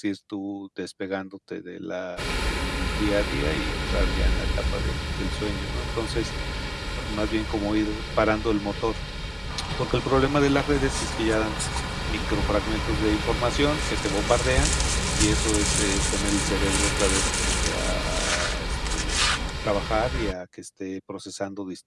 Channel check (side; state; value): both; identical; correlation 1.00